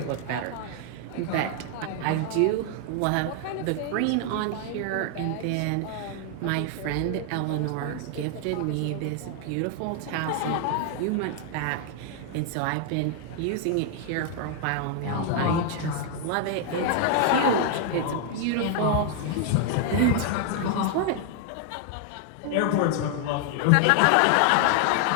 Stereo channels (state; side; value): different; both; correlation 0.00